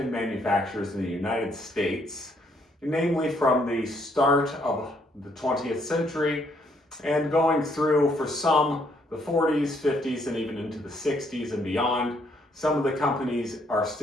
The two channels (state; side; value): normal; both; correlation 0.70